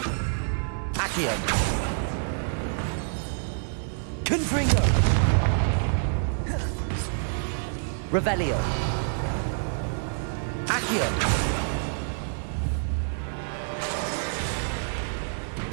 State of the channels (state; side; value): silent; left; 60 dB below the other